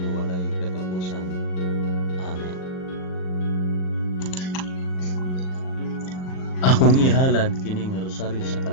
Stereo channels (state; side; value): late; right; 38 ms